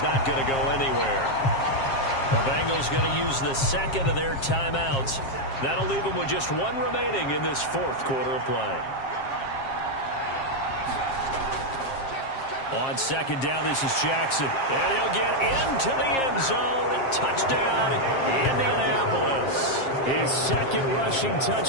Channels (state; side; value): late; right; 7.5 ms